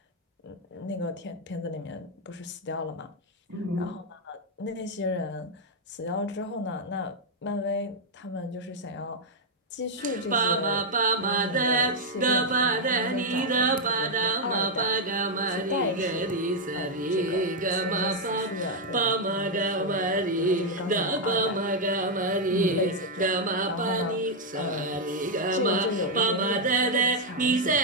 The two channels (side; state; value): both; normal; correlation -0.01